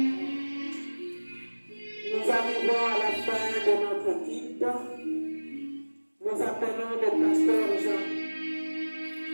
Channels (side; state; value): both; inverted; correlation -1.00